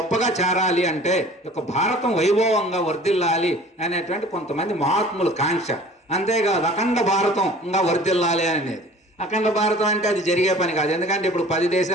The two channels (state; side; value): normal; both; correlation 0.47